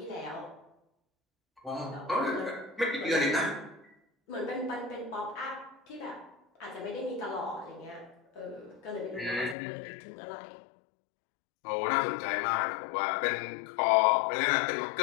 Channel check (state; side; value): drops out; right; at 9.6 s